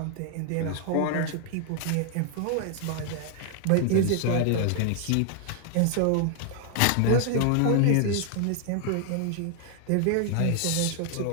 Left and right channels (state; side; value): different; both; correlation 0.00